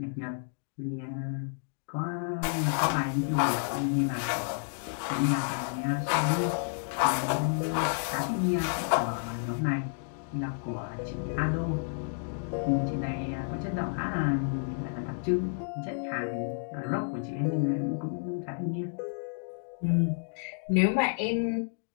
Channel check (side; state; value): right; silent; digital silence